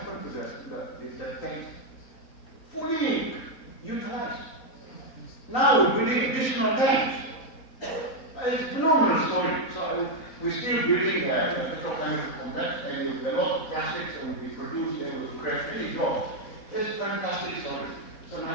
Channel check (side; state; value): right; late; 3.9 ms